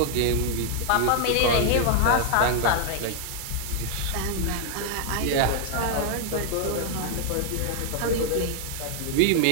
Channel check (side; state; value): both; different; correlation 0.00